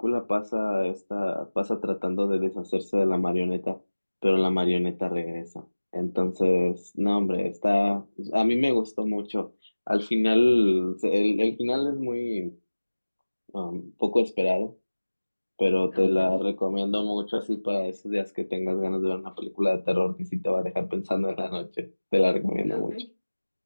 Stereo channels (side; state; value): both; inverted; correlation -1.00